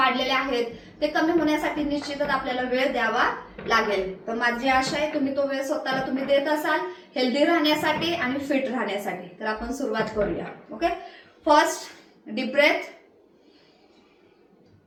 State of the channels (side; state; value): both; identical; correlation 1.00